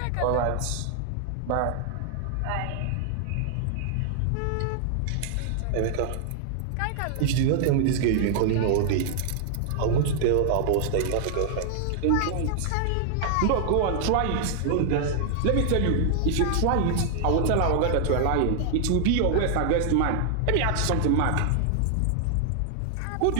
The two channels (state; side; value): different; both; correlation -0.01